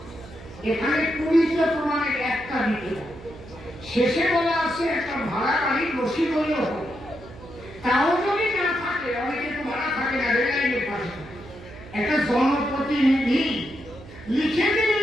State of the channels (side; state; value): right; noise; hum, 17 dB below the sound